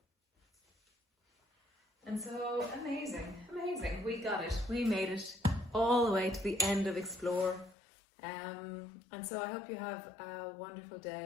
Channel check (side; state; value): right; drops out; at 7.8 s